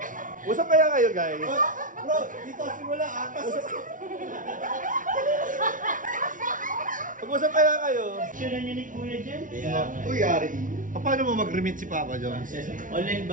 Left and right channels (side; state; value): left; late; 0.38 ms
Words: Usap kaya kayo, guys? Bro, dito simula atas. Pag-usap kaya kayo? Sure niyo ni Kuya dyan? Uy, Yari. Paano mo mag-remit si Papa Jones? Online